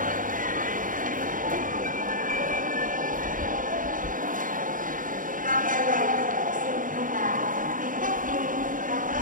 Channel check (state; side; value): late; left; 0.39 ms